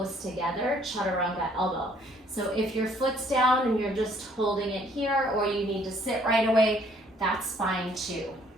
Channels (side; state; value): both; normal; correlation 0.62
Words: together, chaturanga elbow. So if your foot's down and you're just holding it here, or you need to sit right away, that's fine too.